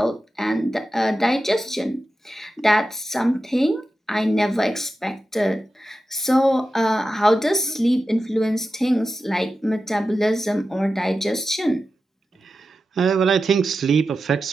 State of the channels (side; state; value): both; normal; correlation 0.92